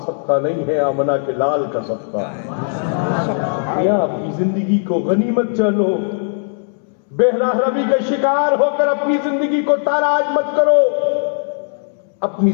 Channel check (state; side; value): silent; right; 67 dB below the other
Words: صدقہ نہیں ہے, آمنہ کے لال کا صدقہ. یا اپنی زندگی کو غنیمت جانو, بے راہروی کا شکار ہو کر اپنی زندگی کو تاراج مت کرو. اپنی